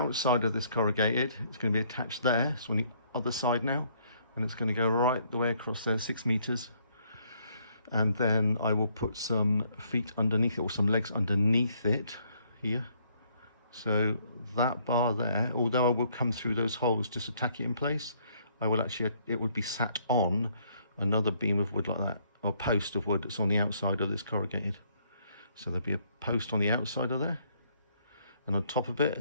of this corrugated. It's going to be attached there. So on the other side now, and it's going to go right the way across there, 6 meters. And then I will put some feet underneath it, or some legs underneath it here. So that bar there, although I will come through those holes just to tack it in place, I will actually, it would be sat on another beam of wood like that, or post of wood that's on the outside of this corrugated. So there'll be a post on the outside of there, and on top of it,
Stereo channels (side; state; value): both; inverted; correlation -0.68